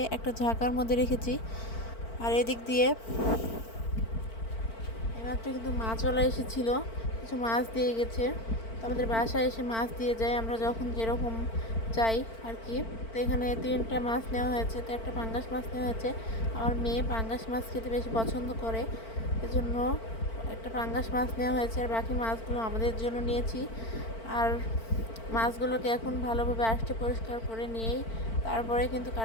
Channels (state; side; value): late; right; 4.5 ms